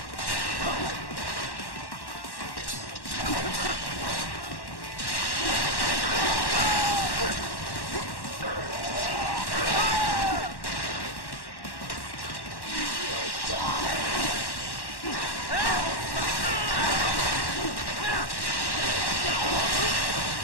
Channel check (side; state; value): right; late; 1.1 ms